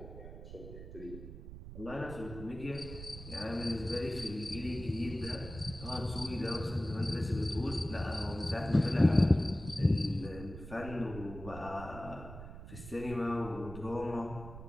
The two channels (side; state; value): right; noise; rumble, 12 dB below the sound